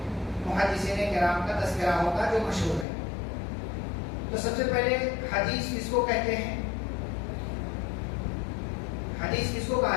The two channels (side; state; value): right; drops out; at 2.9 s